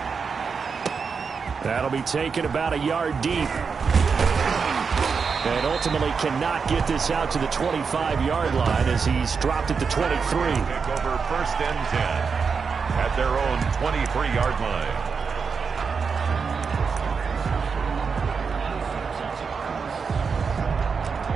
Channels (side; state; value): left; quieter; 5.5 dB